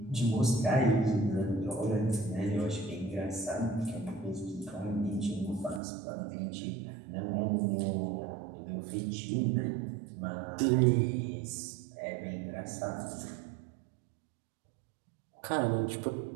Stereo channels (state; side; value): drops out; left; at 5.8 s